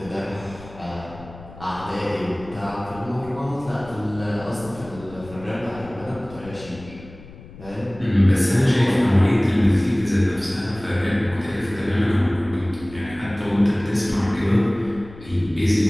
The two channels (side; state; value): left; noise; rumble, 18 dB below the sound